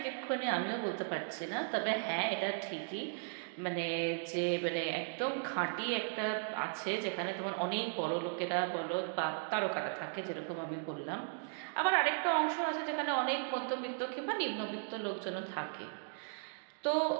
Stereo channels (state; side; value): silent; left; digital silence